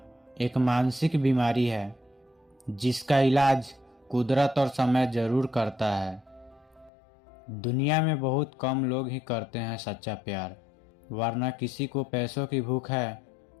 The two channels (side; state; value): right; drops out; at 6.9 s